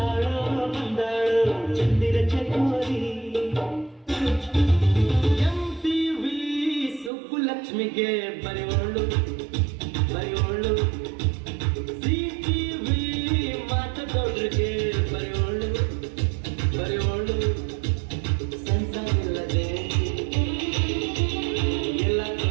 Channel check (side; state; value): left; drops out; at 7.1 s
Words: ಬಂದಾಳೋ ಚಂದಿರ ಚಕೋರಿ MTV ಸುಬ್ಬುಲಕ್ಷ್ಮಿಗೆ ಬರೆಯೋಳು ಬರೆಯೋಳು CTV ಮಾತದೊಡ್ರಿಗೆ ಬರೆಯೋಳು ಬರೆಯೋಳು ಸಂಸಾರಿಲ್ಲದೆ ಎಲ್ಲ